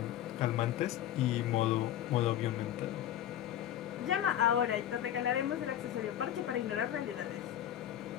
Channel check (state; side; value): quieter; right; 11.5 dB